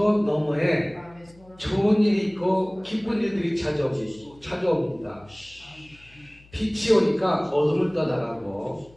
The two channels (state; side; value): noise; left; hum, 27 dB below the sound